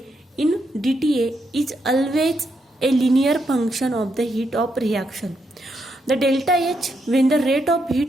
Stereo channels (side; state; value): both; normal; correlation 0.80